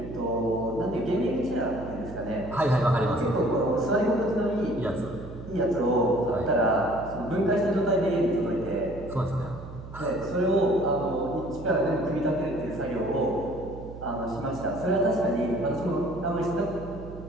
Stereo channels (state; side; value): noise; right; hum, 13 dB below the sound